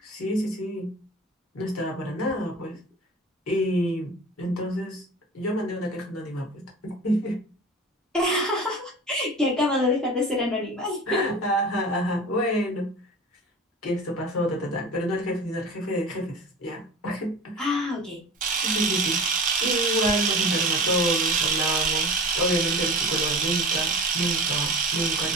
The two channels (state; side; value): normal; both; correlation 0.35